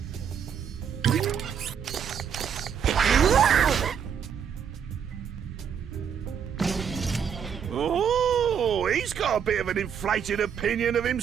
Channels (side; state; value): left; quieter; 7.7 dB